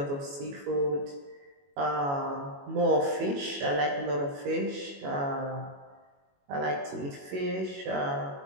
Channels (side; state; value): left; late; 21 ms